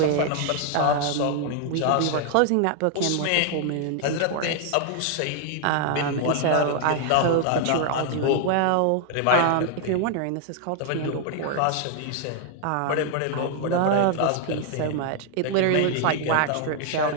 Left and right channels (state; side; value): different; both; correlation 0.00